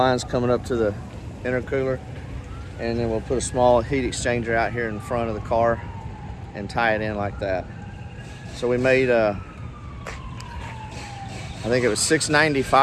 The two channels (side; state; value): both; identical; correlation 1.00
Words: coming up to the intercooler, and then we'll put a small heat exchanger out here in front of the car and tie it in like that. So we made I think it was